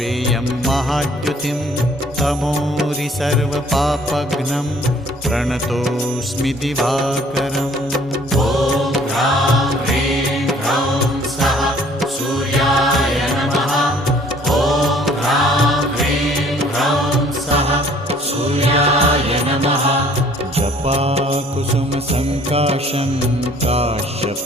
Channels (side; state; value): both; normal; correlation 0.56